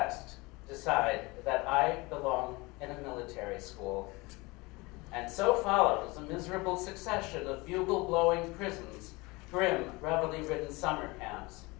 decide that I belong in a military school. And so follows a miserable succession of bugle-blowing prisons, grim, reveille-ridden summer camps.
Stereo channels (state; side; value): quieter; right; 24.1 dB